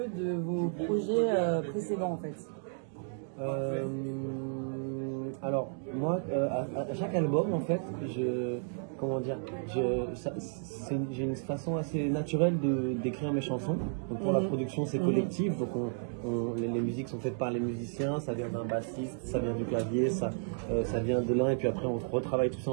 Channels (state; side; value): silent; left; digital silence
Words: de vos projets précédents en fait? Alors moi, à chaque album en fait, j'ai une façon assez naturelle d'écrire mes chansons. Donc pour la production c'est collectif, donc les musiques sont faites par les musiciens, ça vient d'un bassiste, ça vient du clavier, ça vient de l'un et puis après on retravaille tout ça